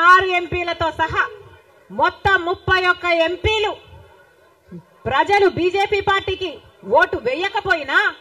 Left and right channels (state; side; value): identical; both; correlation 1.00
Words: 6 ఎంపీలతో సహా మొత్తం 31 ఎంపీలు ప్రజలు బీజేపీ పార్టీకి ఓటు వేయకపోయినా,